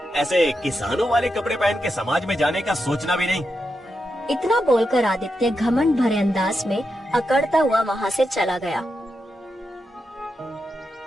ऐसे किसानों वाले कपड़े पहन के समाज में जाने का सोचना भी नहीं। इतना बोलकर आदित्य घमंड भरे अंदाज में अकड़ता हुआ वहाँ से चला गया।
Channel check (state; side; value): normal; both; correlation 0.86